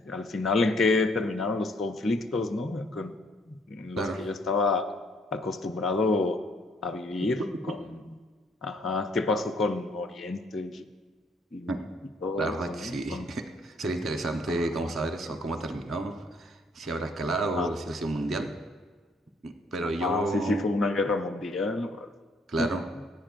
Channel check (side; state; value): both; normal; correlation 0.65